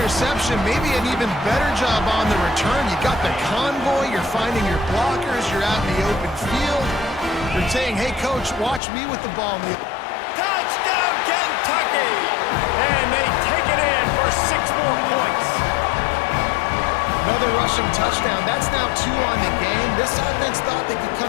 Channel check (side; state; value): right; drops out; at 8.8 s